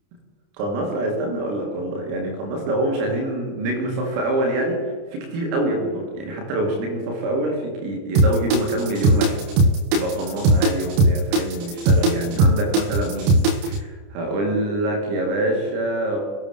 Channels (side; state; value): left; late; 30 ms